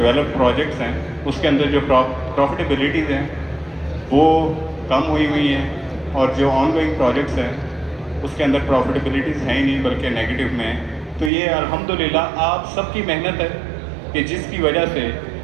پروجیکٹس ہیں اس کے اندر جو پروفیٹیبلٹیز ہیں وہ کم ہوئی ہیں, اور جو آن گوئنگ پروجیکٹس ہیں اس کے اندر پروفیٹیبلٹیز ہیں ہی نہیں بلکہ نیگیٹو میں ہیں. تو یہ الحمدللہ آپ سب کی محنت ہے کہ جس کی وجہ سے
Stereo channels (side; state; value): left; drops out; at 11.3 s